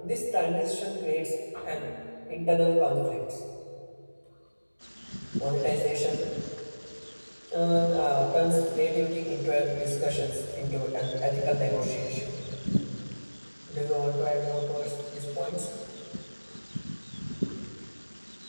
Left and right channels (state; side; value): inverted; both; correlation -1.00